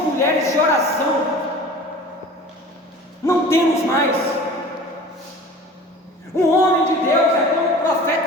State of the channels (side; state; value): both; normal; correlation 0.41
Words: de oração. mais. Um homem de Deus é como o